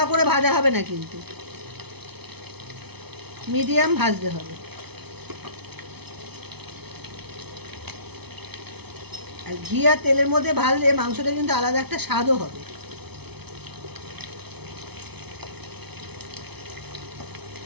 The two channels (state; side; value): late; left; 0.98 ms